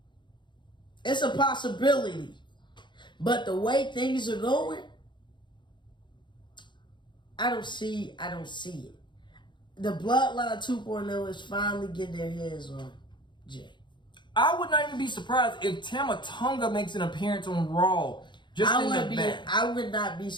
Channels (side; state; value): right; late; 0.23 ms